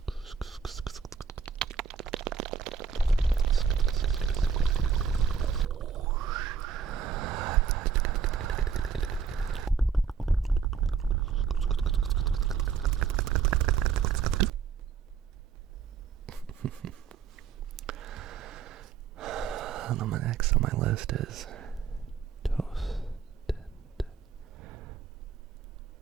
Next on my list is toasted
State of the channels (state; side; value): quieter; left; 6.5 dB